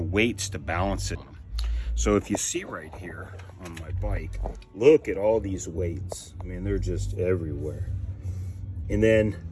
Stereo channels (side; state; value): both; identical; correlation 1.00